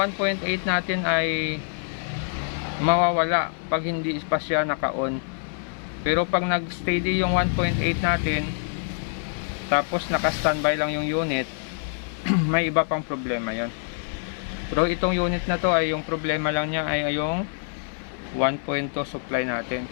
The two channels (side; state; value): right; silent; 58 dB below the other